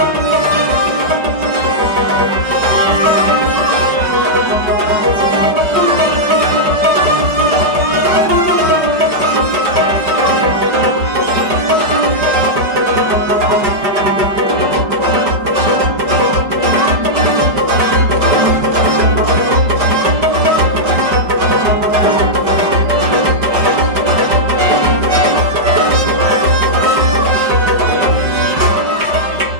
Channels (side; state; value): left; late; 4.9 ms